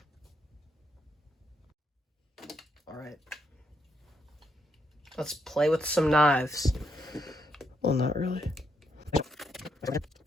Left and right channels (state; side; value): normal; both; correlation 0.77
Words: Alright. Let's play with some knives. Well, not really.